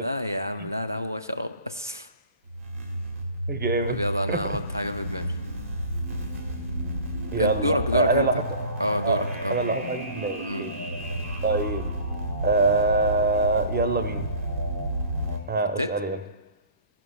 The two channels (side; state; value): both; inverted; correlation -0.47